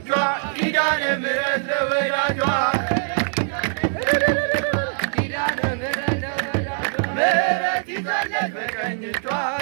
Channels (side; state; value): left; silent; 57 dB below the other